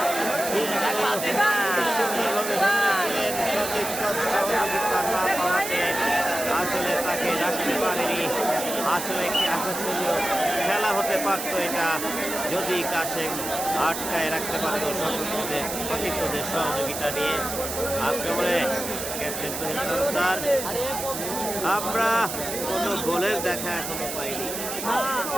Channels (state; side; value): noise; right; hiss, 6 dB below the sound